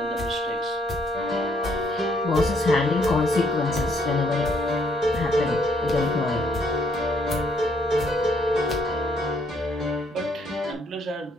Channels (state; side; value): normal; both; correlation 0.69